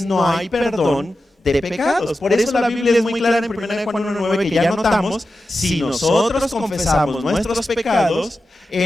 no hay perdón de pecados. Por eso la Biblia es muy clara en 1 Juan 1:9 que ya notamos, si nosotros confesamos nuestros pecados,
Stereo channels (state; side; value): normal; both; correlation 0.92